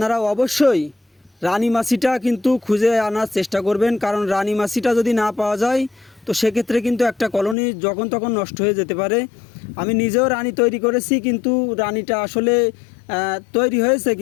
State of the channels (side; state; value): right; drops out; at 7.6 s